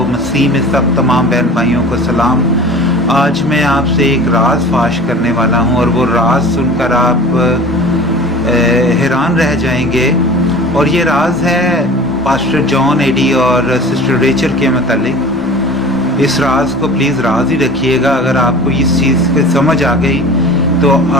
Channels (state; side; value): noise; left; rumble, 24 dB below the sound